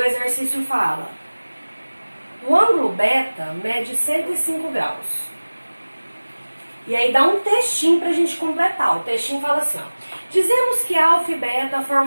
exercício fala, o ângulo beta mede 105 graus. E aí dá um textinho pra gente completar. O textinho fala assim, ó. Dizemos que alfa e beta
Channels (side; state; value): both; inverted; correlation -1.00